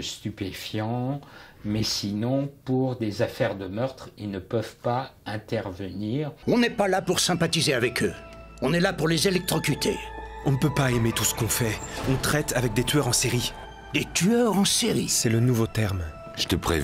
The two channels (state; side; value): identical; both; correlation 1.00